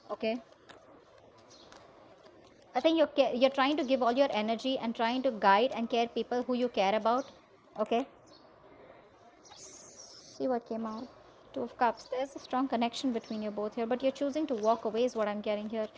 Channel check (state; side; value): identical; both; correlation 1.00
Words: okay? I think you're trying to give all your energy and trying to guide and care people who you care about, okay? See what came out. Two of Cups. There's a strong connection between you both here, but you're choosing to walk away is what I'm getting here.